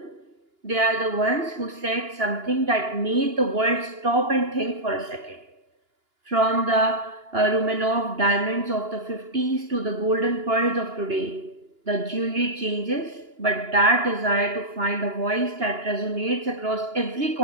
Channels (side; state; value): left; late; 2.9 ms